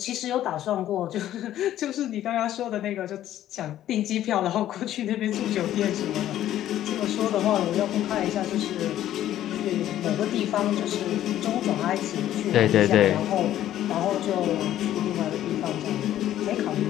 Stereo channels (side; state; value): right; quieter; 12.4 dB